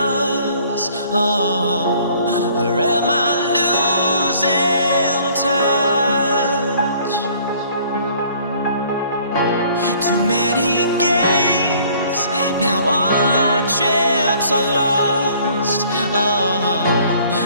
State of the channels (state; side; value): inverted; both; correlation -0.57